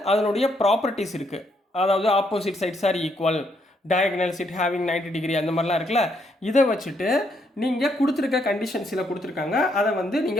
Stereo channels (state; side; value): normal; both; correlation 0.74